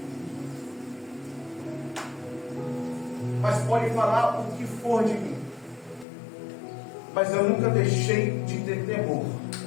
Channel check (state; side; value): drops out; right; at 6.1 s